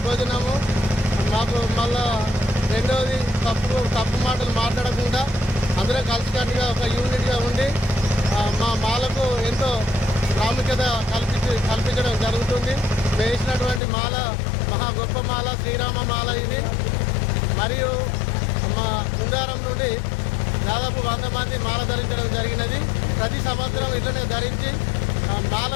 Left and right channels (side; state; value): right; drops out; at 13.8 s